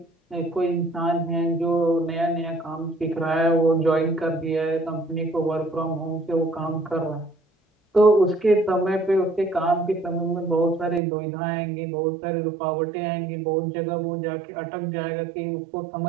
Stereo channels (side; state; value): left; drops out; at 11.0 s